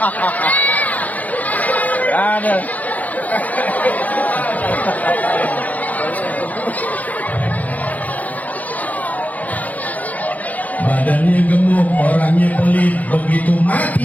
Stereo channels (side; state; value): right; late; 0.077 ms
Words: Ada. badannya gemuk, orangnya pelit, begitu